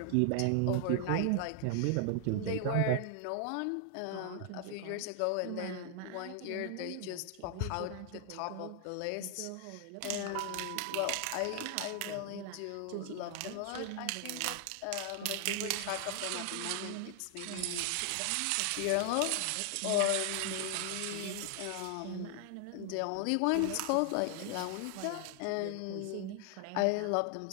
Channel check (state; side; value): different; both; correlation 0.00